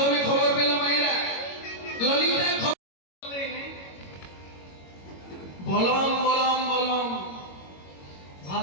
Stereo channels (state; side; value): late; right; 22 ms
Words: খবর পেল, মায়েরা ললিতা বলম বলম বলম